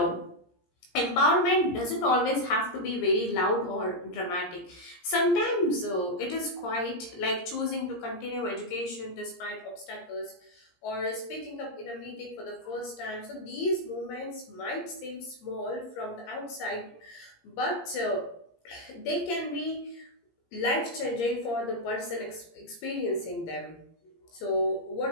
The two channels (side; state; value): right; late; 17 ms